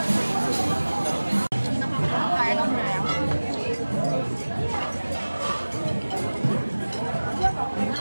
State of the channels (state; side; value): inverted; both; correlation -1.00